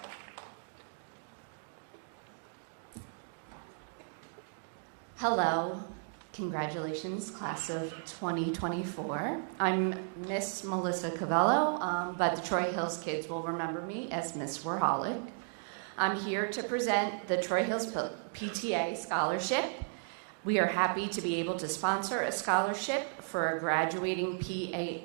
Hello, congratulations, class of 2024. I'm Miss Melissa Covello, but the Troy Hills kids will remember me as Miss Warholic. I'm here to present the Troy Hills PTA Scholarship. We are happy to be able to sponsor a scholarship for a graduating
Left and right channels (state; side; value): silent; left; digital silence